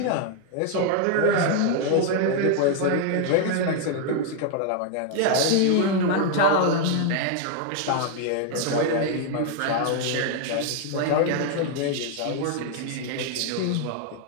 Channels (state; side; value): different; both; correlation 0.00